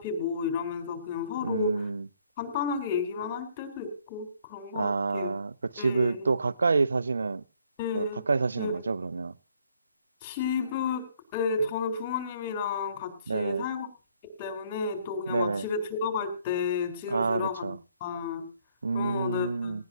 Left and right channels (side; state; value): both; inverted; correlation -0.66